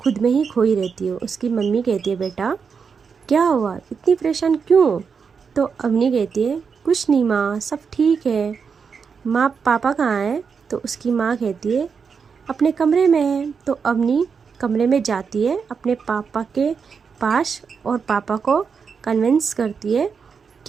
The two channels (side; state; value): left; quieter; 5.9 dB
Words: में ही खोई रहती है। उसकी मम्मी कहती है, बेटा क्या हुआ, इतनी परेशान क्यों हो? तो अवनी कहती है, कुछ नहीं माँ, सब ठीक है। माँ पापा कहाँ है? तो उसकी माँ कहती है, अपने कमरे में है। तो अवनी कमरे में जाती है अपने पापा के पास और पापा को कन्विंस करती है